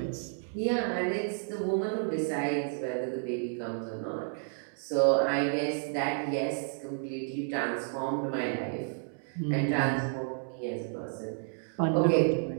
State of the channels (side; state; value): left; silent; digital silence